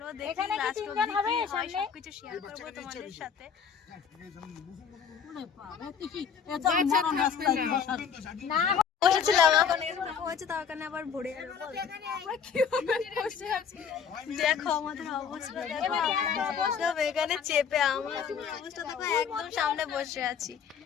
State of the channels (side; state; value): right; quieter; 7.0 dB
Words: দেখি লাস্ট অবধি কি হয়, সবকিছু শেয়ার করবো তোমাদের সাথে। বসেছিলাম, এখন এরকম হয়েছে, তার কারণে আবার ভরে গেল। দেখো আমাদের অবস্থা, দেখো এখানে চেপে আমার অবস্থা দেখো, একদম সামনে বসে আছি।